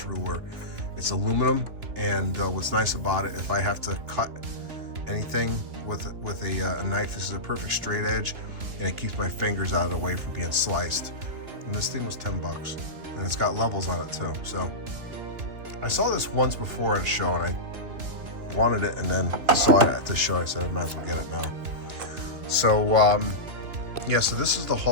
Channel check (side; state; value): left; late; 3.1 ms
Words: ruler. It's aluminum, and what's nice about it, if I have to cut anything with a knife, this is a perfect straight edge, and it keeps my fingers out of the way from being sliced. And this thing was $10, and it's got levels on it too. So I saw this once before at a show, and I wanted it, and then saw it at the show. I said I might as well get it now. So yeah, so this is the